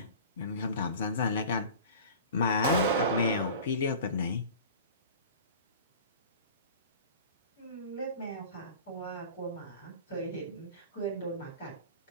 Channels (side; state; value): both; inverted; correlation -0.39